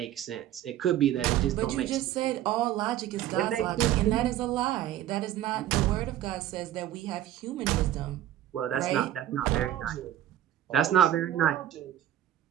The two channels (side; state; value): left; quieter; 12.4 dB